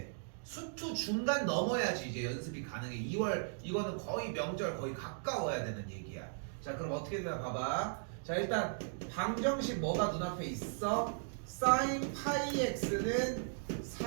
수투 중간 넘어야지 이제 연습이 가능해. 2월 이거는 거의 명절 거의 가까워야 되는 얘기야. 자, 그럼 어떻게 되나 봐봐. 자, 일단 방정식 뭐가 눈앞에 있어? sin 파이 x는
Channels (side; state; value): left; silent; digital silence